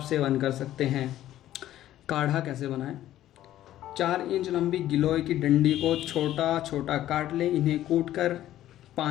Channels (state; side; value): quieter; right; 13.2 dB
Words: सेवन कर सकते हैं। काढ़ा कैसे बनाएं। 4 इंच लंबी गिलोय की डंडी को छोटा छोटा काट लें, इन्हें कूट कर